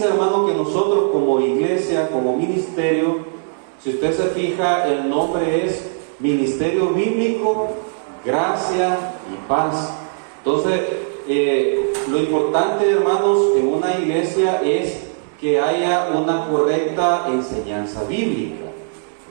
hermano, que nosotros como iglesia, como ministerio, si usted se fija, el nombre es Ministerio Bíblico, Gracia y Paz. Entonces, lo importante, hermanos, en una iglesia es que haya una correcta enseñanza bíblica.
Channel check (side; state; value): left; silent; digital silence